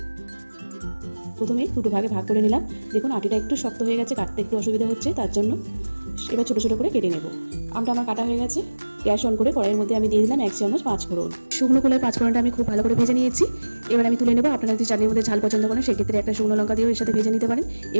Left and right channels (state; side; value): inverted; both; correlation -1.00